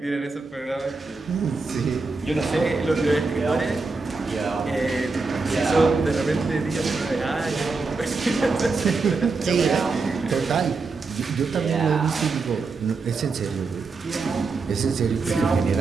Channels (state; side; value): quieter; left; 4.1 dB